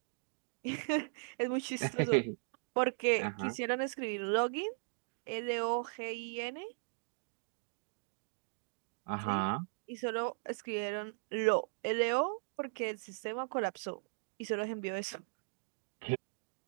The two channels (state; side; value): silent; left; digital silence